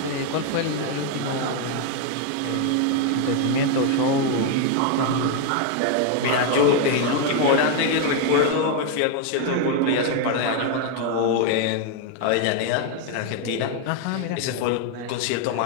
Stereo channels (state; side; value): different; both; correlation 0.01